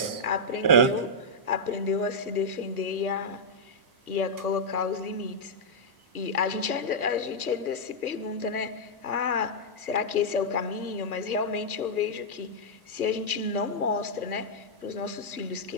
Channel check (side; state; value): right; late; 1.2 ms